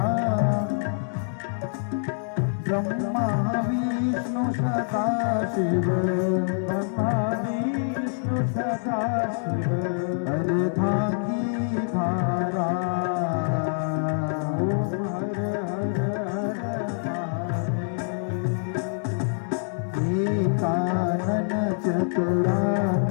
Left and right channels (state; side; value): silent; right; digital silence